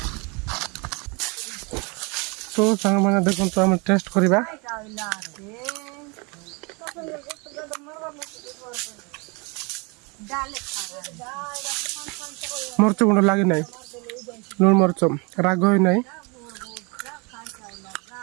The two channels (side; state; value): left; quieter; 30.3 dB